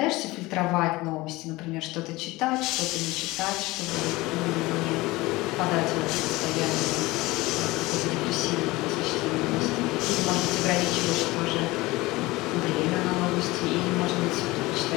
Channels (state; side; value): quieter; right; 20.6 dB